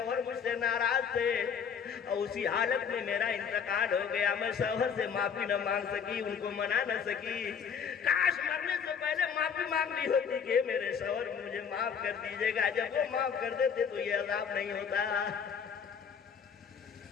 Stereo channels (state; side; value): quieter; right; 7.0 dB